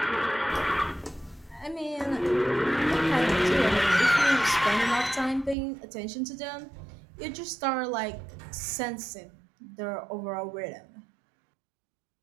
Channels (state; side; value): drops out; left; at 5.6 s